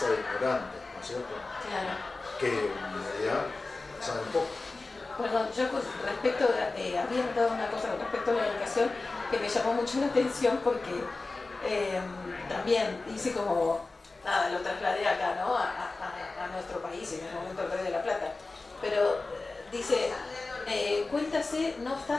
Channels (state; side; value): quieter; right; 3.5 dB